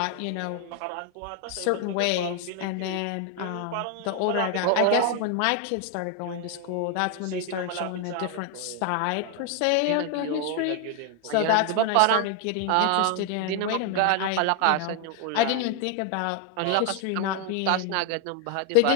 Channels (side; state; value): both; different; correlation 0.00